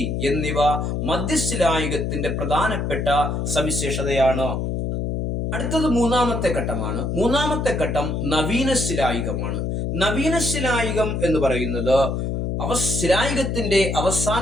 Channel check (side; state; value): left; noise; hum, 1 dB below the sound